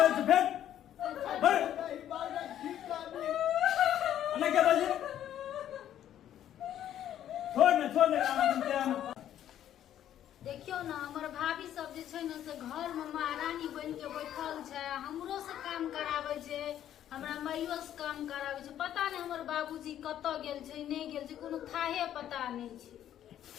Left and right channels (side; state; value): right; quieter; 11.1 dB